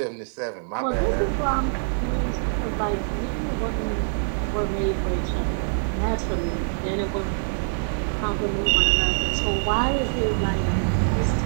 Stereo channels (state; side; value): silent; left; 62 dB below the other